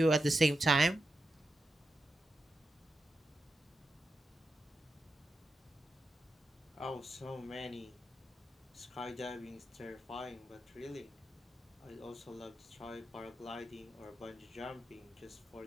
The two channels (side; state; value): both; normal; correlation 0.88